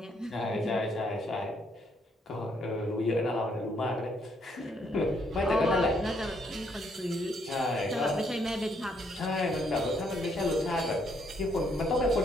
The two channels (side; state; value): both; normal; correlation 0.71